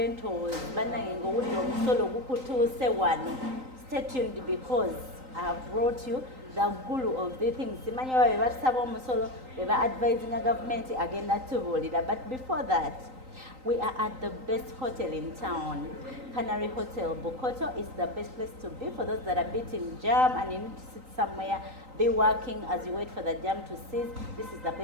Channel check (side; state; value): left; late; 3.9 ms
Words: Stay tuned because I have brought you the guru of the things. We are advising a government again that. But before that, we are at the best hotel in town, Canary Hotel. Bokoto is the best place to be for those that are beating jam and you need to sit somewhere, be working as you wait for the jam to cease. This is the